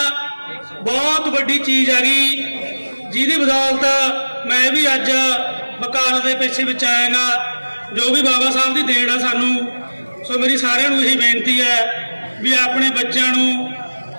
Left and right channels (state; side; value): inverted; both; correlation -1.00